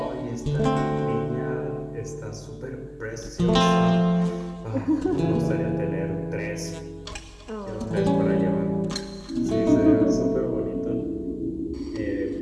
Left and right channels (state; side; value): identical; both; correlation 1.00